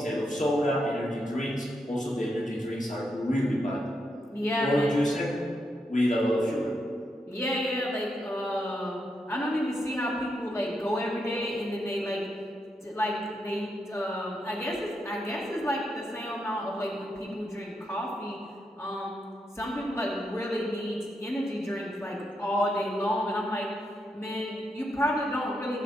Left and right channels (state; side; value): normal; both; correlation 0.82